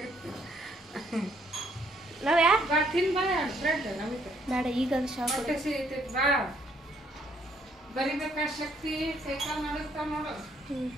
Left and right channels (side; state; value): both; normal; correlation 0.68